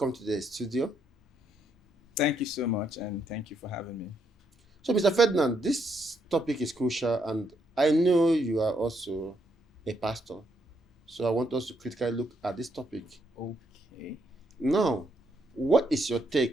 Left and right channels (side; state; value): both; normal; correlation 0.75